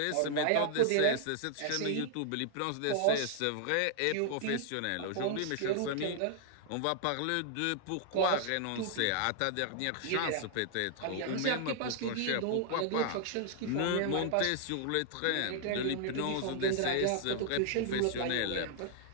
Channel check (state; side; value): different; both; correlation 0.00